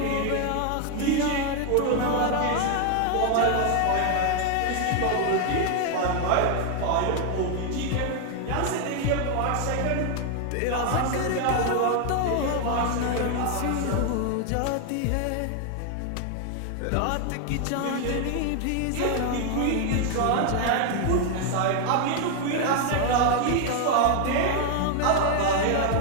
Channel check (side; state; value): both; different; correlation 0.00